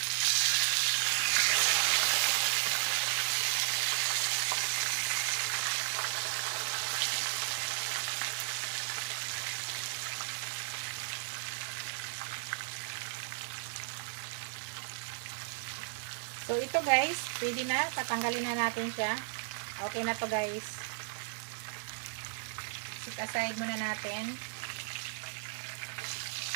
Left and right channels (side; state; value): left; silent; digital silence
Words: So, So, ito guys, pwede na. Tatanggalin na natin siya. Okay na to guys. Set aside muna natin.